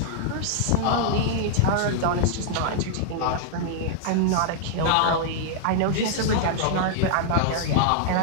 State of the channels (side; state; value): both; different; correlation -0.01